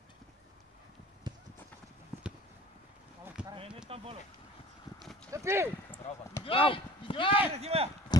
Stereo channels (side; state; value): both; normal; correlation 0.45